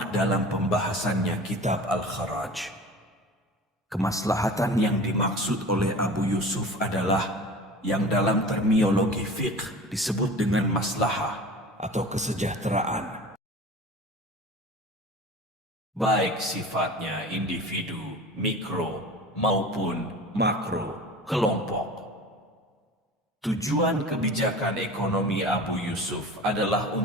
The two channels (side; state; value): both; normal; correlation 0.38